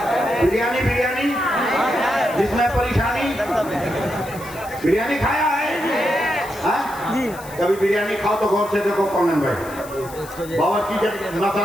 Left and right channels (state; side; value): noise; left; hiss, 18 dB below the sound